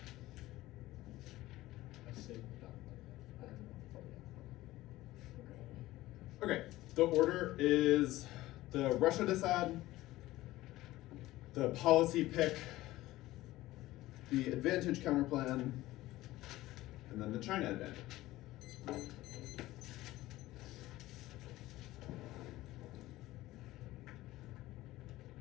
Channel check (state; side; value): quieter; right; 17.0 dB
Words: Okay, the order is the Russia decide, the policy pick, the advantage counterplan, and then the China advantage.